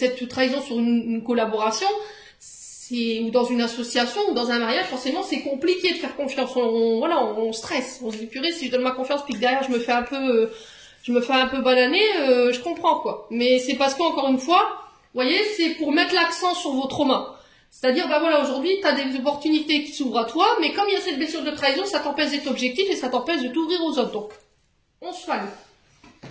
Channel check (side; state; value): both; identical; correlation 1.00